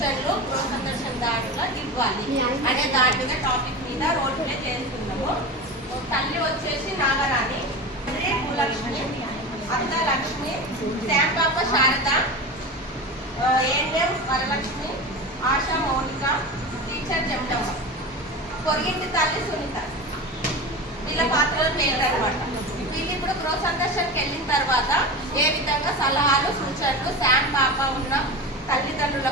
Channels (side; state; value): both; normal; correlation 0.27